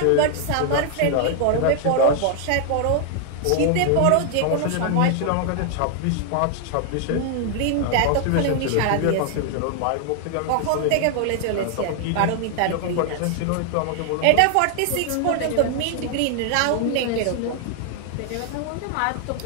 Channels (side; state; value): both; different; correlation 0.00